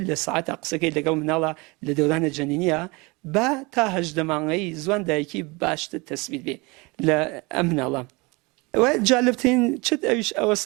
لە ساعتە قسەکەی لەگەڵ مناڵە لە دەورانە جەنینیە با تا 18 مانگەی زوان دایکی باشتر تەسبیت بێ لە ئەم مناڵە جالبترین چت ئەویش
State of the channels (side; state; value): left; quieter; 26.2 dB